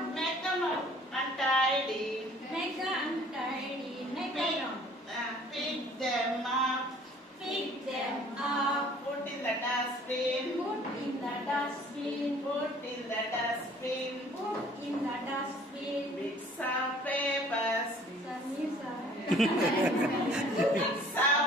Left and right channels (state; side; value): normal; both; correlation 0.54